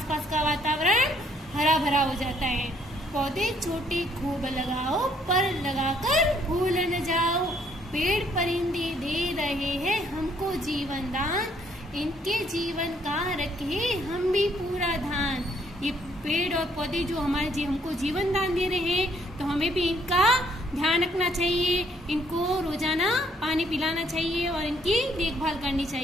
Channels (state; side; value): normal; both; correlation 0.66